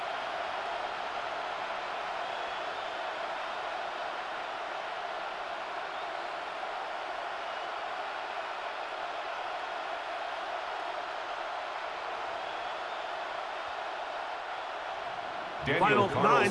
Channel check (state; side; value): identical; both; correlation 1.00